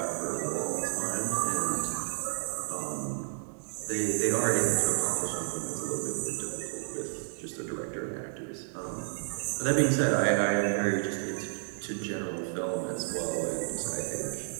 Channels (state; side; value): silent; left; digital silence